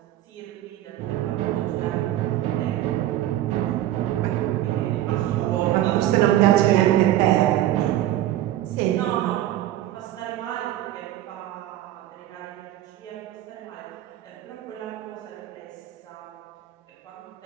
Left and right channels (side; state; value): left; quieter; 13.5 dB